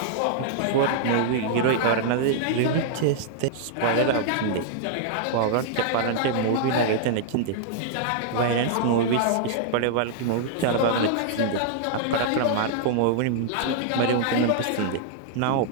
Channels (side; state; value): both; different; correlation -0.01